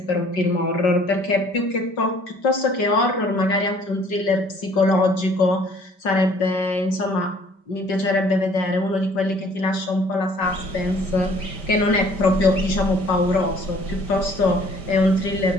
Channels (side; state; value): right; late; 5.2 ms